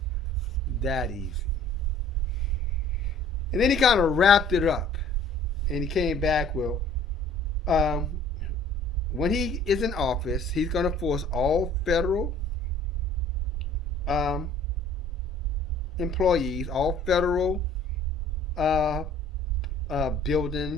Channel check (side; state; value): both; normal; correlation 0.52